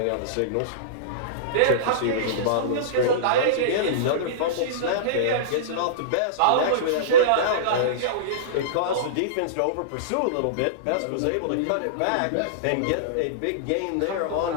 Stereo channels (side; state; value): both; different; correlation -0.04